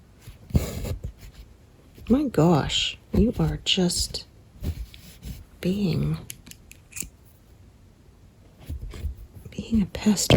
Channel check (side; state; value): both; identical; correlation 1.00